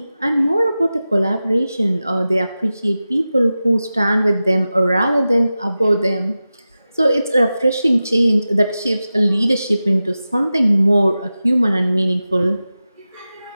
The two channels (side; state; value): both; inverted; correlation -0.94